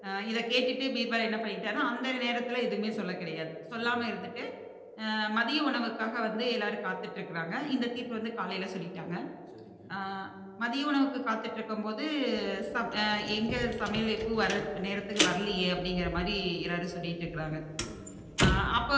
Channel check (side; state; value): both; identical; correlation 1.00